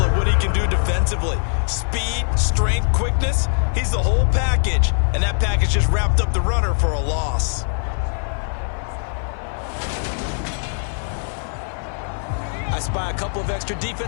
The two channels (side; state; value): right; silent; 55 dB below the other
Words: what he can do defensively. Speed, strength, quickness, he's the whole package. And that package just wrapped up the runner for a loss. I spy a couple of extra